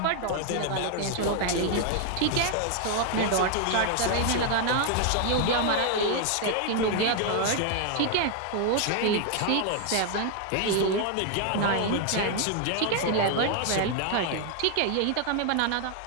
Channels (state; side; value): different; both; correlation 0.00